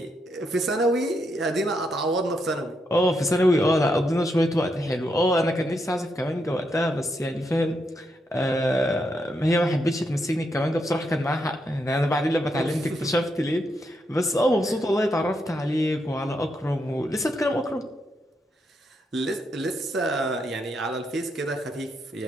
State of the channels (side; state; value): both; normal; correlation 0.80